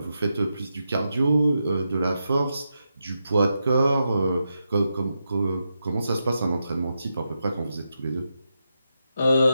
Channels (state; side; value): inverted; both; correlation -0.87